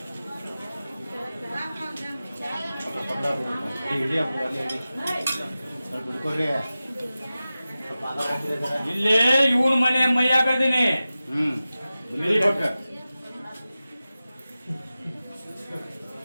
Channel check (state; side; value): inverted; both; correlation -0.95